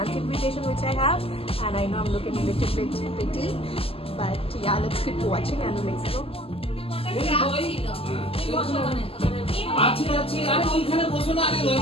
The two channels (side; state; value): right; late; 0.28 ms